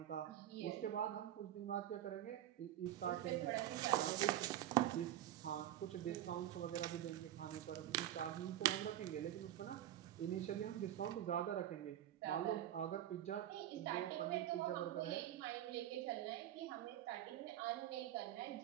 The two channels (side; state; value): left; quieter; 12.4 dB